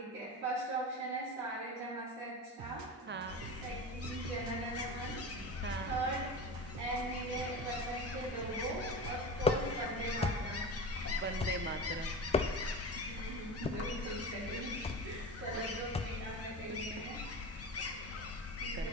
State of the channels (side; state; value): both; normal; correlation 0.29